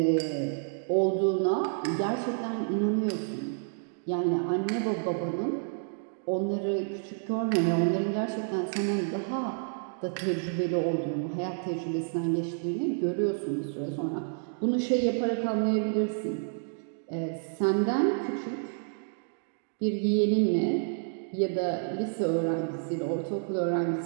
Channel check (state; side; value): silent; left; digital silence